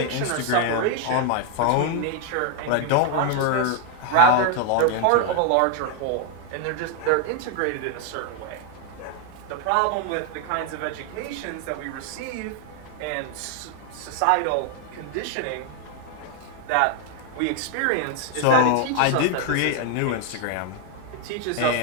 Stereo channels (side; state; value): both; different; correlation 0.01